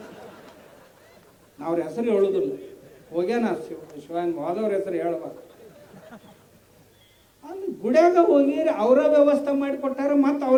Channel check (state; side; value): identical; both; correlation 1.00